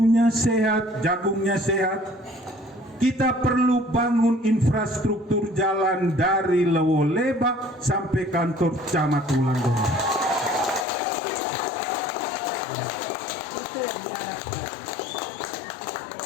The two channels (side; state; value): right; drops out; at 10.9 s